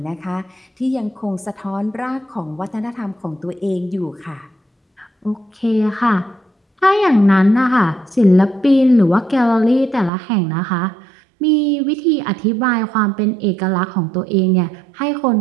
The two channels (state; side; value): drops out; left; at 10.1 s